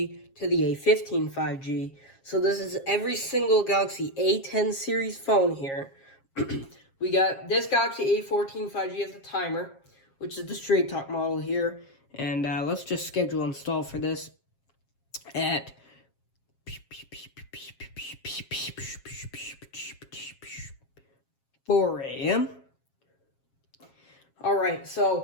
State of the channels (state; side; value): late; right; 7.4 ms